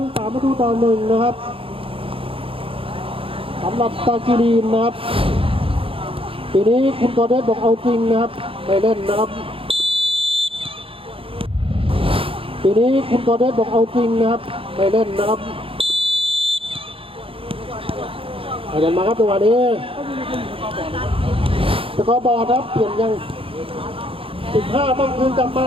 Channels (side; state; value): left; late; 0.27 ms